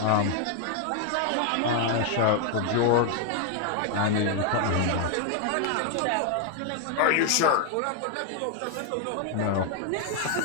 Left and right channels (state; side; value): different; both; correlation 0.01